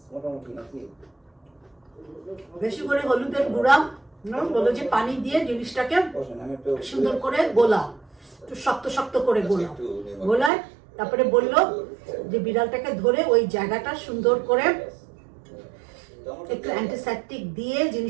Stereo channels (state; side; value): drops out; left; at 10.5 s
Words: বেশি করে হলুদের গুঁড়া বললো যে পানি দিয়ে জিনিসটাকে সুন্দর করে গোলাও, একটু শক্ত শক্ত করে গোলাও। গোলায় তারপরে বললো যে বিড়ালটাকে ধরে ওই জায়গাটা সুন্দর করে একটু অ্যান্টিসেপটিক দিয়ে